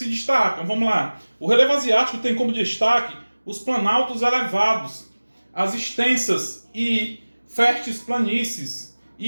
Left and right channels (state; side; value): inverted; both; correlation -1.00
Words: destacam? Vamos lá. O relevo asiático tem como destaque os planaltos elevados, as extensas e férteis planícies